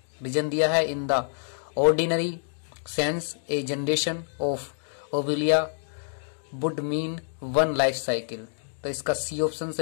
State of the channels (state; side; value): silent; right; 60 dB below the other